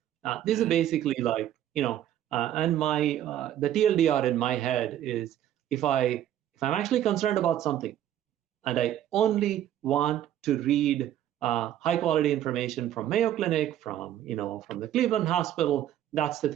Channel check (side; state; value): left; quieter; 11.6 dB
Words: These are basically like and my the TLDR in my head is if I'm actually concerned about something, and I only want to read high quality information from Mayo Clinic, from the Cleveland Hospital, that's the